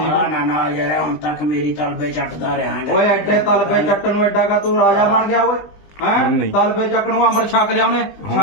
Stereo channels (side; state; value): right; late; 20 ms